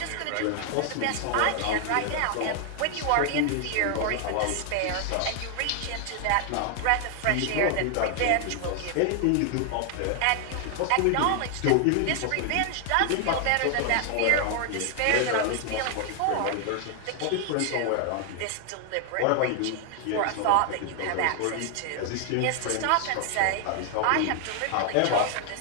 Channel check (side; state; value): both; different; correlation 0.00